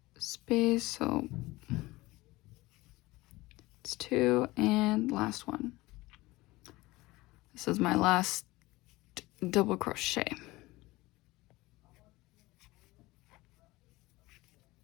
space, so it's 2 and last one. This is my last double crochet.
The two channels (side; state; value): right; quieter; 20.1 dB